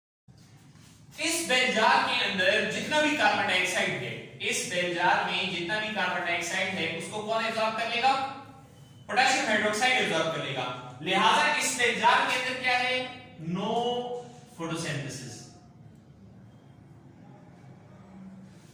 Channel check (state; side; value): identical; both; correlation 1.00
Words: इस बेलजार के अंदर जितना भी कार्बन डाइऑक्साइड है, इस बेलजार में जितना भी कार्बन डाइऑक्साइड है उसको कौन एब्जॉर्ब कर लेगा? पोटेशियम हाइड्रोक्साइड एब्जॉर्ब कर लेगा। लिहाजा इस बेलजार के अंदर क्या है? No photosynthesis.